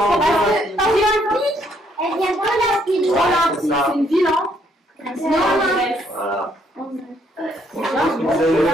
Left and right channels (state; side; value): normal; both; correlation 0.70